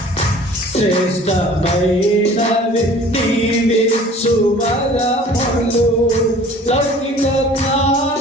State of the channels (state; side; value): normal; both; correlation 0.48